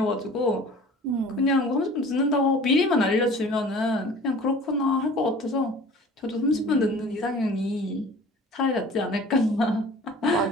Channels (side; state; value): both; normal; correlation 0.45